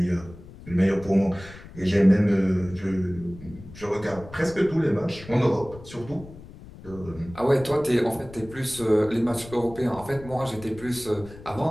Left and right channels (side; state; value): left; noise; rumble, 17 dB below the sound